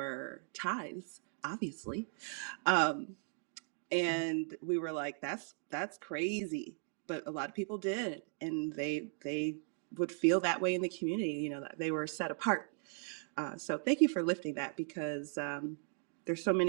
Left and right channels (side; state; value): left; silent; 53 dB below the other